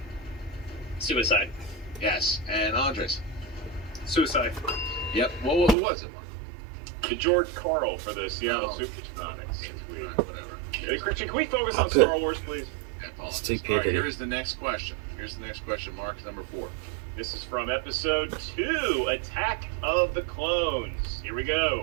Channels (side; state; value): left; drops out; at 5.8 s